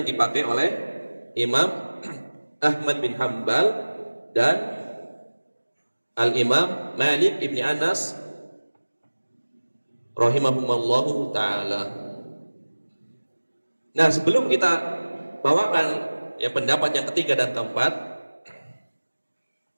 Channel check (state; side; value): inverted; both; correlation -1.00